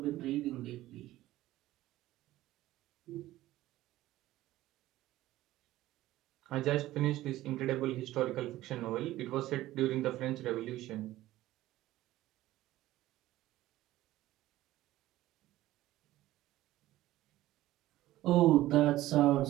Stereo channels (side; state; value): left; quieter; 15.7 dB